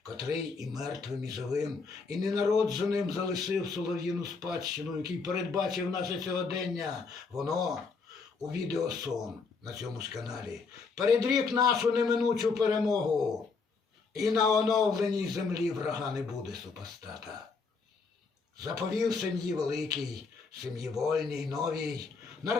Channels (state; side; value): quieter; right; 4.7 dB